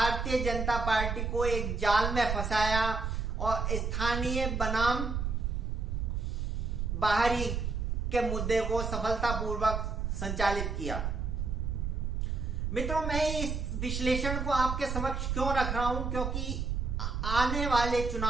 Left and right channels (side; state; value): right; noise; rumble, 1 dB below the sound